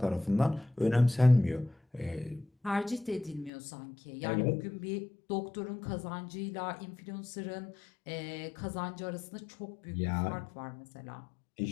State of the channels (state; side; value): drops out; right; at 3.5 s